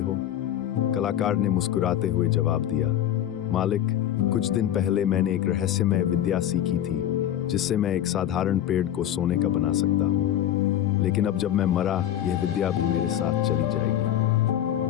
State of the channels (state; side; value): quieter; right; 11.3 dB